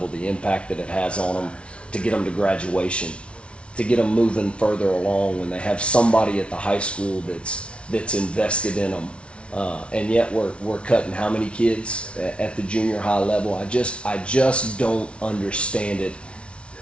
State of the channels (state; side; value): late; right; 0.059 ms